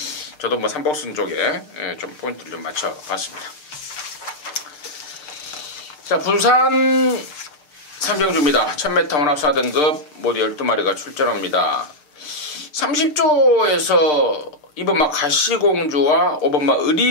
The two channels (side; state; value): right; late; 6.7 ms